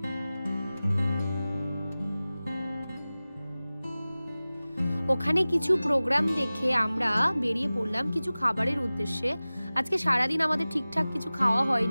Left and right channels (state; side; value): inverted; both; correlation -0.98